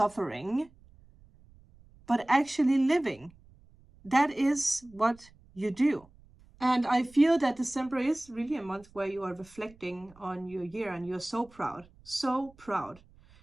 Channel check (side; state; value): right; noise; rumble, 27 dB below the sound